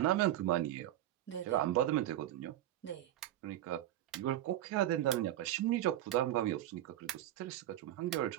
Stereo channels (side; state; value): left; quieter; 13.1 dB